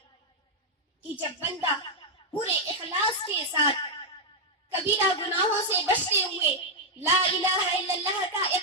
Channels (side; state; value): both; normal; correlation -0.03